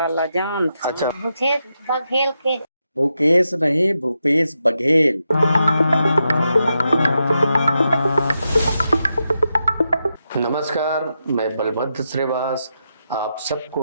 ला जान अच्छा, भूपेश बघेल के। भूपेश नहीं, भूपेश बघेल। नमस्कार, मैं बलभद्र श्रीवास आप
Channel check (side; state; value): both; inverted; correlation -0.86